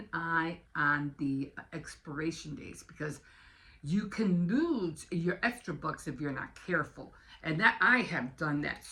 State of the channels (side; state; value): both; identical; correlation 1.00